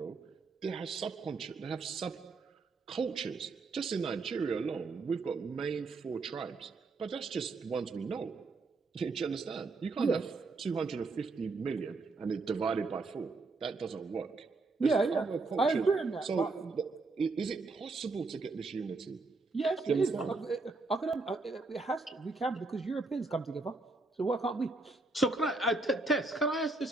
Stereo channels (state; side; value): quieter; left; 3.7 dB